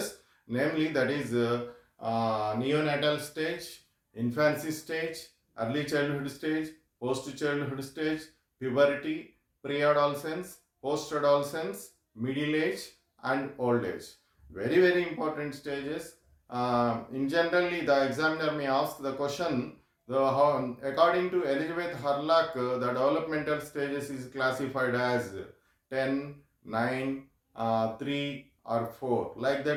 namely, that is neonatal stage, infancy stage, early childhood stage, post childhood stage, puberty, pre-adolescence, post-adolescence, middle age, and old age. Very, very important stages. In generally, the examiner may ask the question, according to Elizabeth Hurlock, the developmental stages is classified as 10, 9, 3 or 4. Like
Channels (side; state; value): both; identical; correlation 1.00